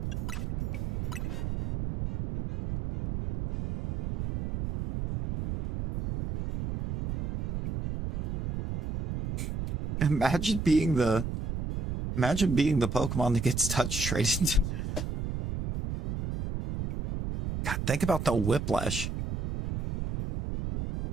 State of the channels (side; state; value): right; noise; rumble, 4 dB below the sound